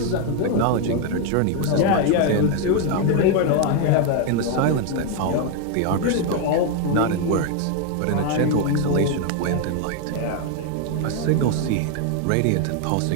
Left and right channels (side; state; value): both; different; correlation 0.01